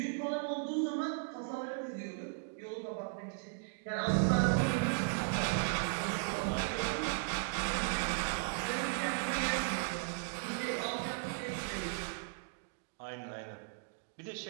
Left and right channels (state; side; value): silent; left; digital silence